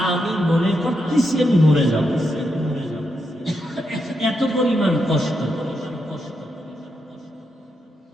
আমি মনে করতেছি আমি মরে যাব, এত পরিমাণ কষ্ট।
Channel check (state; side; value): normal; both; correlation 0.83